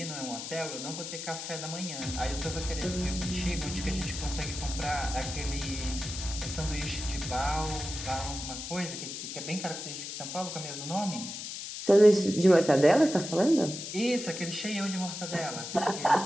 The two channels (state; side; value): noise; left; hiss, 7 dB below the sound